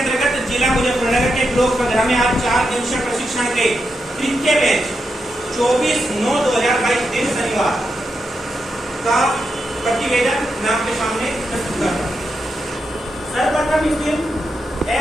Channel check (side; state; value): both; normal; correlation 0.85